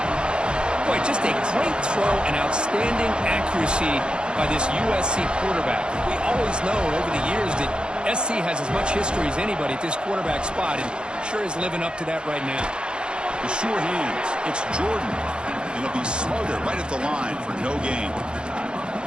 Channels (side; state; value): left; late; 0.051 ms